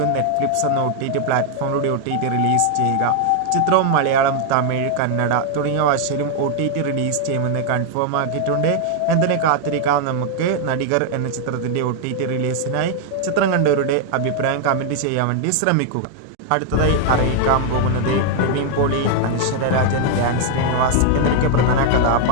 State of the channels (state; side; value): different; both; correlation 0.00